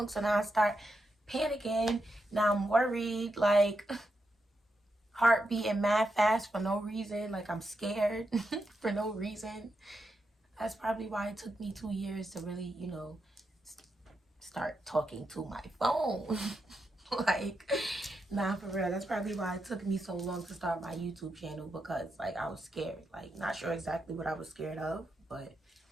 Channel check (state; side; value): normal; both; correlation 0.85